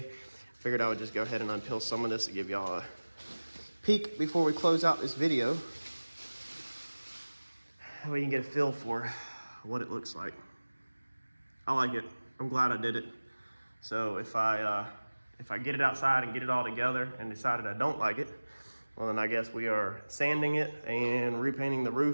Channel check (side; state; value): both; inverted; correlation -1.00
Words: Figured I would just go ahead and unpill some of this to give y'all a peek before we close out this video. We can get a feel for what it looks like. I like it. I'm glad I did it. So if I get it outside and get it all together and decided I don't like it, well then I guess we are sanding it and repainting the